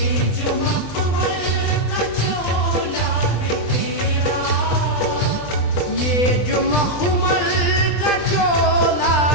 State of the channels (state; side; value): late; right; 20 ms